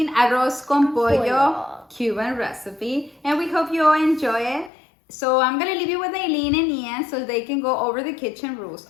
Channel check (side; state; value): right; drops out; at 4.7 s